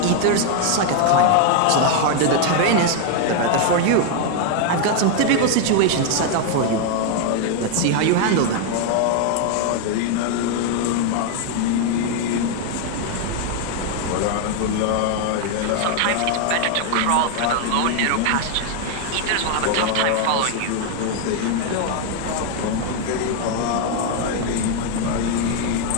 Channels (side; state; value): both; different; correlation 0.00